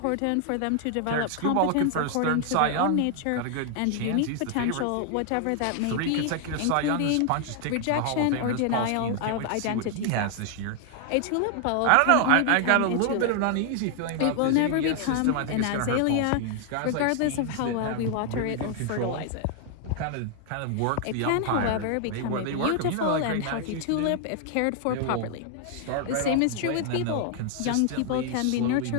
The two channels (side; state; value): both; different; correlation 0.00